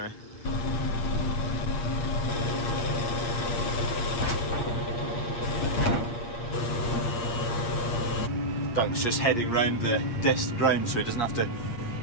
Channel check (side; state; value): right; late; 8.5 ms